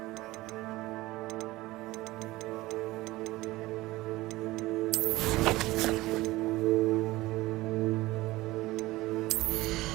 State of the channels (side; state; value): left; quieter; 18.9 dB